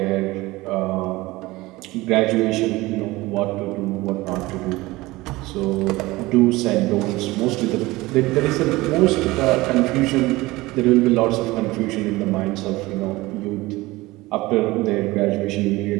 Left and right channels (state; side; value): quieter; left; 20.1 dB